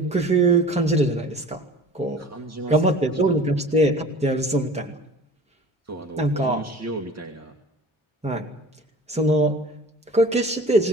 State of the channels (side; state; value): both; normal; correlation 0.43